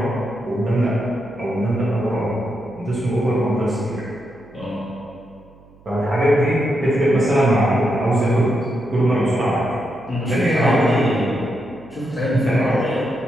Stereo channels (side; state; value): right; noise; hum, 26 dB below the sound